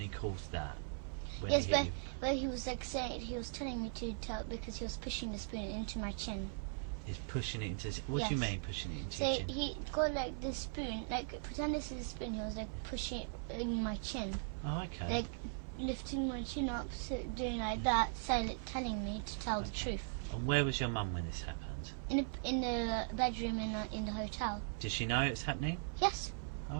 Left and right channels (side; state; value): left; silent; 51 dB below the other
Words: calls that. When Yes, he but he was like saying, he was telling me to tell because he was pushing the spoon into my chin. He's pushing it into. What do you mean pushing it into So your chin? he got like the spoon, like pretend this is a spoon. He was like pushing it in my chin. Oh, okay. Like lifting my chin up, so doing like that, telling me to tell the truth. And where was your mum when this happened? In the bedroom in the hotel. Did she know it was happening? Yes. Oh,